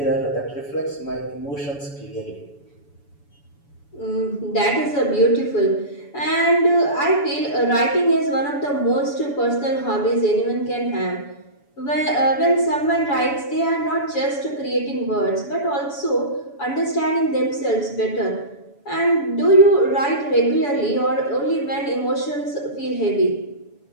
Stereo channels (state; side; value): late; right; 7.1 ms